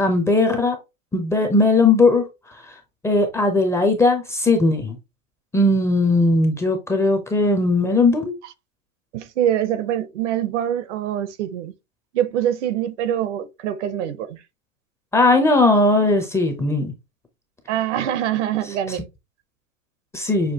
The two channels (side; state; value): both; normal; correlation 0.45